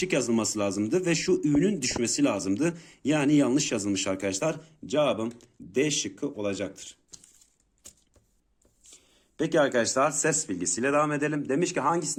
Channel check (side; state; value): both; identical; correlation 1.00